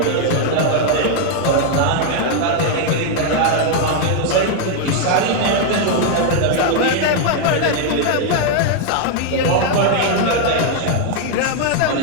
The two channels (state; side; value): different; both; correlation 0.00